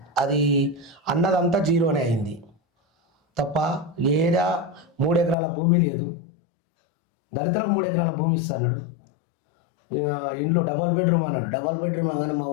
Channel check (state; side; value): drops out; right; at 5.4 s